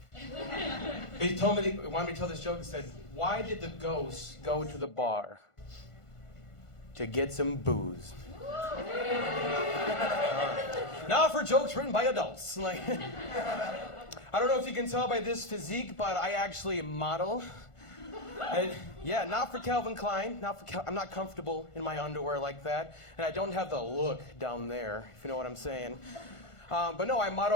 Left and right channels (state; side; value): late; right; 1.5 ms